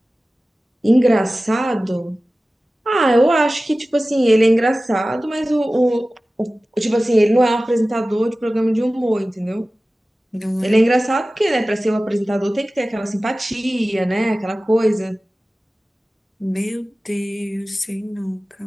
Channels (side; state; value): both; normal; correlation 0.96